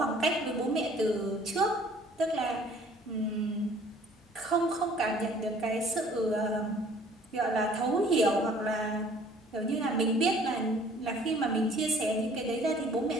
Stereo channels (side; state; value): both; normal; correlation 0.54